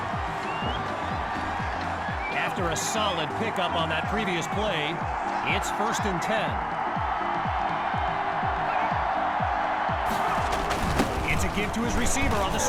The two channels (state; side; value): identical; both; correlation 1.00